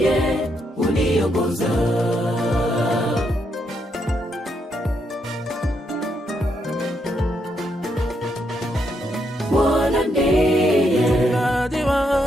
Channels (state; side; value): normal; both; correlation 0.78